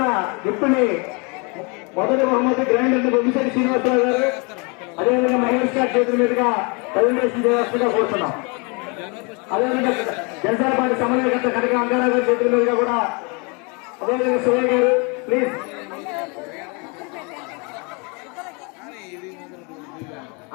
గిఫ్ట్ ని మొదటి బహుమతి గ్రాండ్ బొమ్మిశెట్టి శ్రీనివాసరావు గారు, అదేవిధంగా మహేష్ గారి చేతుల మీదుగా ప్రజెంటేషన్ చేయాల్సిందిగా కోరుతున్నాం. అదేవిధంగా జనసేన పార్టీ సమన్వయకర్త కనక అంగారావు గారి చేతుల మీదుగా కూడా, అదేవిధంగా సురేష్ గారు ప్లీజ్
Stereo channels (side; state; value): right; quieter; 32.0 dB